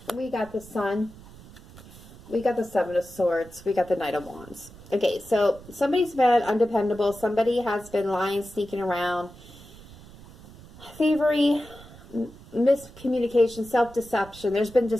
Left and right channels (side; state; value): right; noise; rumble, 20 dB below the sound